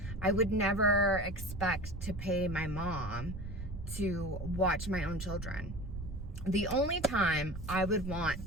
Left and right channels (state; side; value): noise; right; rumble, 9 dB below the sound